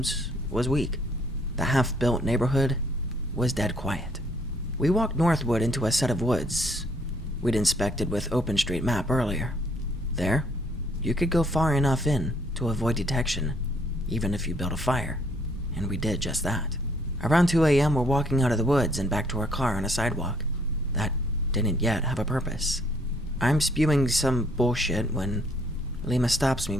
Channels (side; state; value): both; normal; correlation 0.64